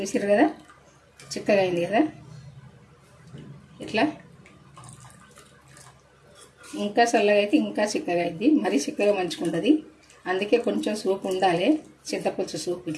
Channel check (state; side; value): identical; both; correlation 1.00